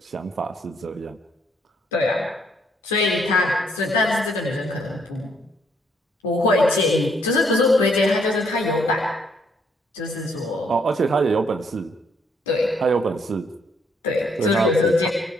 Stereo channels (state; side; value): normal; both; correlation 0.70